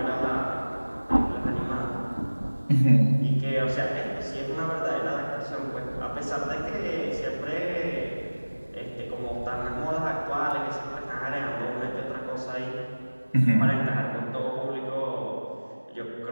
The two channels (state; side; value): inverted; both; correlation -1.00